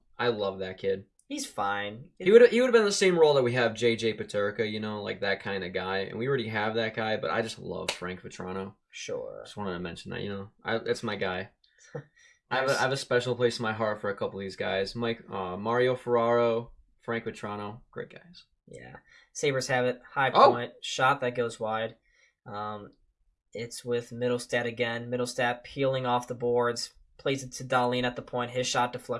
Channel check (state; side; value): identical; both; correlation 1.00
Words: I love that kid. He's fine. He would have been the same role that we have JJ Peterka, you know, like that kind of guy. And we already have that guy, but I just love Frank Vetrano. Sure. Just wanted to mention that, you know. That's my guy. I have a special place in my heart for a couple of these guys. Mario Ferraro, Frank Vetrano, great guys. Yeah. Sabres have it. High point. Shot that goes wide. It's with Middlestat again. Middlestat peeling off the boards. Plays it to Dahlin at the point. His shot